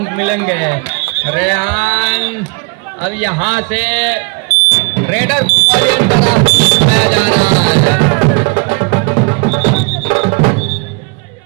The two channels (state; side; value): quieter; left; 32.9 dB